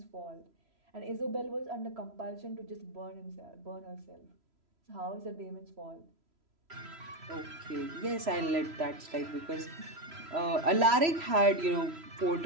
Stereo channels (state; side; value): late; left; 3.0 ms